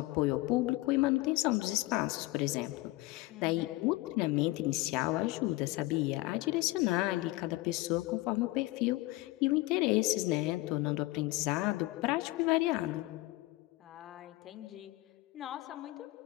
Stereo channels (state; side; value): quieter; right; 20.0 dB